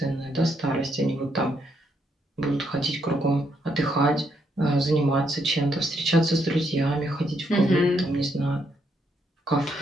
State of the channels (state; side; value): normal; both; correlation 0.76